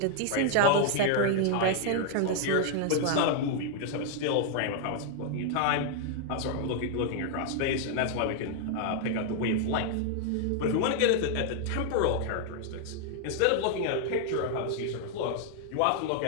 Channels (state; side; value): different; both; correlation 0.00